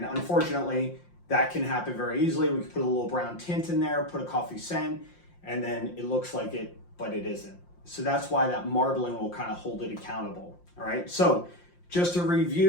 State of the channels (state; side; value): late; right; 5.7 ms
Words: unfortunately, that can happen very easily. We can put a little brown tint in there, put a coffee scent, and then it looks like it, but it isn't. So that's why that marbling will kind of hold it accountable. All right, so just to